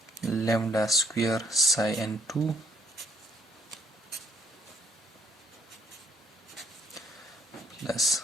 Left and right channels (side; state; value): both; normal; correlation 0.67